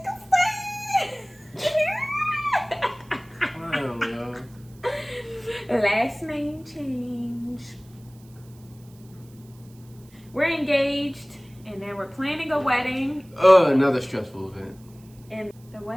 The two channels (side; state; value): right; noise; hiss, 28 dB below the sound